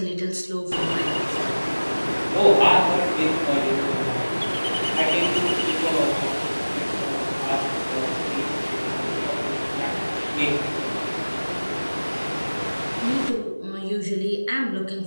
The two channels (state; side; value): inverted; both; correlation -1.00